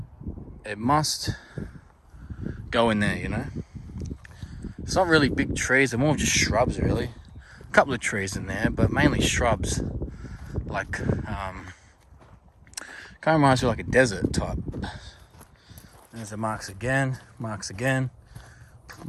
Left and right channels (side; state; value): both; identical; correlation 1.00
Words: It must go in there, you know. It's not really big trees, they're more just shrubs really. A couple of trees in there, but mainly shrubs. Like kind of reminds me of like a desert type. There's the marks again.